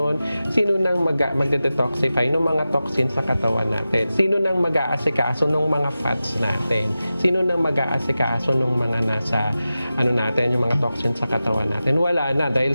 sino nang magde-detoxify ng mga toxins sa katawan natin? Sino nang mag-aasikaso ng mga fats natin? Sino nang mag-aasikaso ng mga nasa natin, yung mga toxins sa katawan natin? Wala na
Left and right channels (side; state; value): both; inverted; correlation -0.94